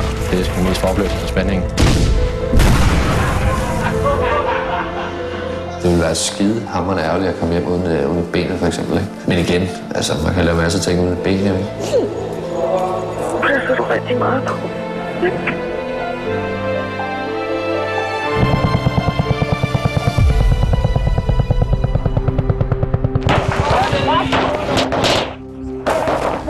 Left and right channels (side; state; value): both; identical; correlation 1.00